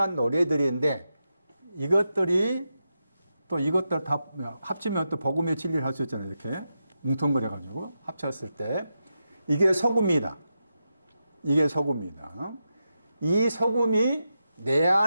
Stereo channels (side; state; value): both; inverted; correlation -0.88